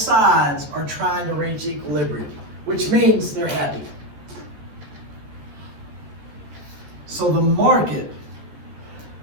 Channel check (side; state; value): left; late; 14 ms